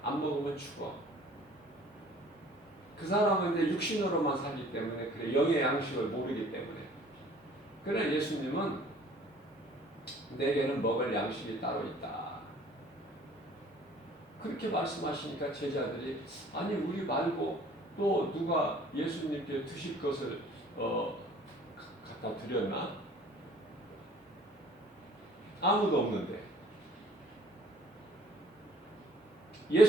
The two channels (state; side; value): normal; both; correlation 0.53